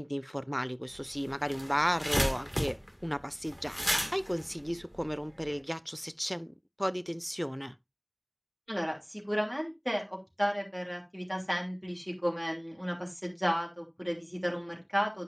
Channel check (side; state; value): both; identical; correlation 1.00